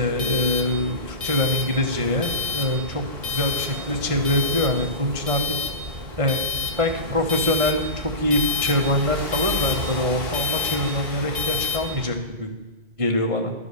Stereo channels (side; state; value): left; late; 2.3 ms